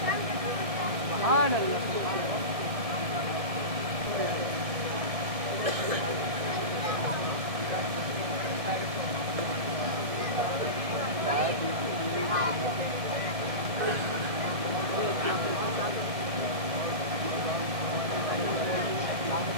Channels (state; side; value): late; left; 1.6 ms